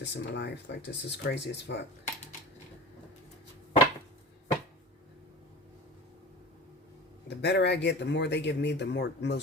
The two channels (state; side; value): normal; both; correlation 0.35